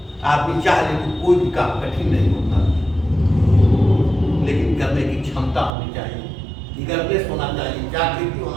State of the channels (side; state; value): left; drops out; at 5.8 s